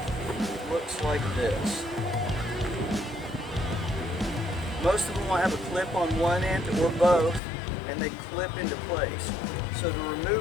It looks like this. Most of them will have a clip on one end or both, and they clip into place. So to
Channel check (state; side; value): drops out; right; at 7.4 s